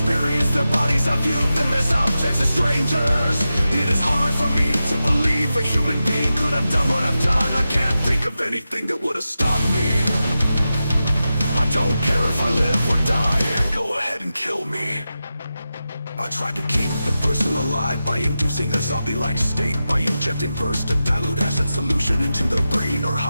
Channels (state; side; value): inverted; both; correlation -0.92